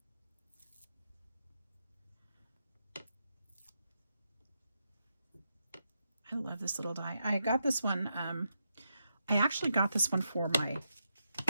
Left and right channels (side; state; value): both; inverted; correlation -0.84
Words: I love this little die. I got this one, I actually got this one for my